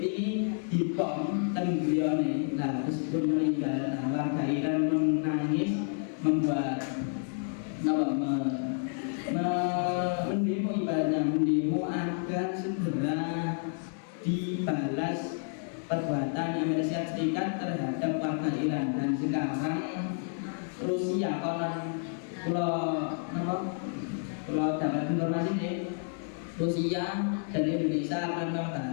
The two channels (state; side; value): silent; right; 58 dB below the other